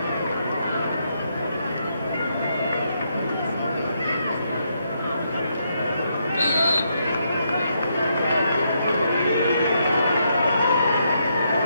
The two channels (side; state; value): both; inverted; correlation -0.78